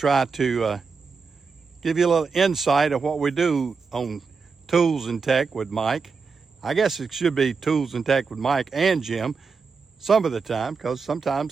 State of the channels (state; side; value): quieter; left; 5.0 dB